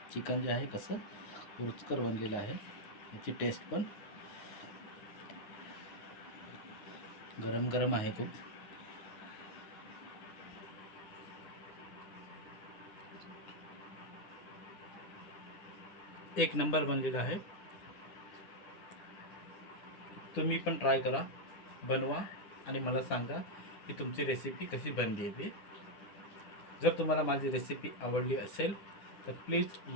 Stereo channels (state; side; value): late; right; 9.9 ms